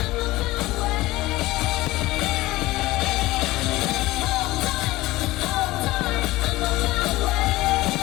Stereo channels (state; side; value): quieter; right; 18.8 dB